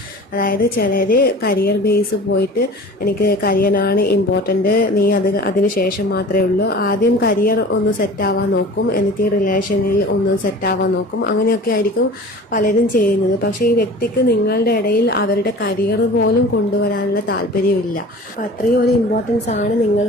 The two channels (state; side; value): normal; both; correlation 0.40